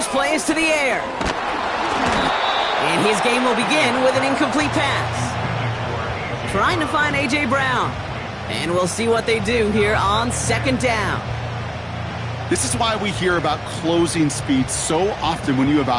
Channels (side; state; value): both; identical; correlation 1.00